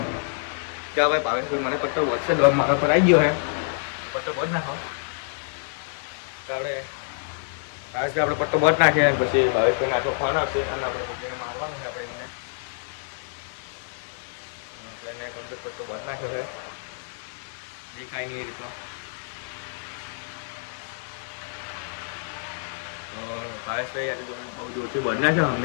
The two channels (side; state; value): right; silent; digital silence